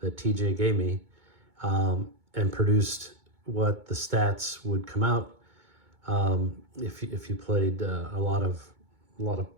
TJ gave me and produced what the stats would come out if you played a lot of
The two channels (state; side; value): late; left; 2.2 ms